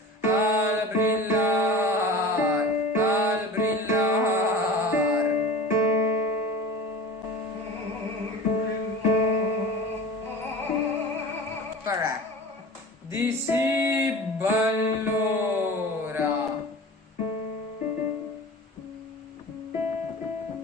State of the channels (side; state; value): both; normal; correlation 0.36